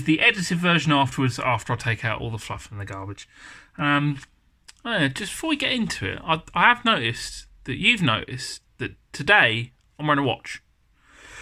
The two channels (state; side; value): identical; both; correlation 1.00